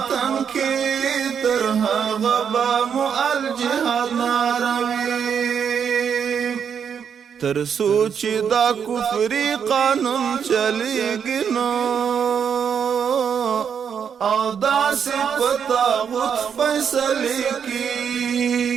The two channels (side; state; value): left; quieter; 7.4 dB